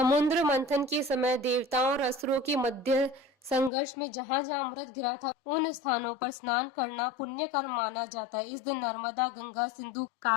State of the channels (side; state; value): right; drops out; at 3.7 s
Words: मंथन के समय देवताओं और असुरों के मध्य संघर्ष में जहां जहां अमृत गिरा था उन स्थानों पर स्नान करना पुण्य कर्म माना जाता है। इस दिन नर्मदा, गंगा, सिंधु,